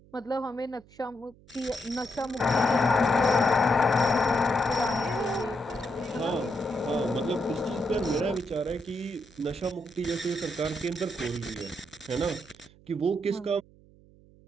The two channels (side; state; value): right; noise; hum, 26 dB below the sound